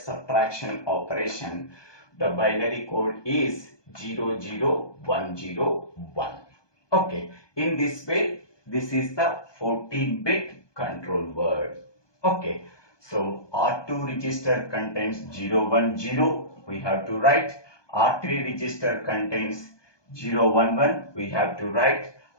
operation. The binary code is 00101. Okay, in this way, this is the 14-bit control word. Okay, so R2 register contains 010. We have to write. R3 register contains 011. We have to write.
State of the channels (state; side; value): late; right; 1.2 ms